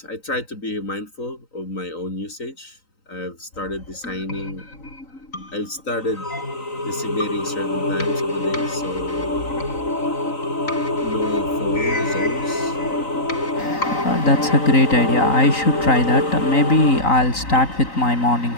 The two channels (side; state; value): right; late; 3.9 ms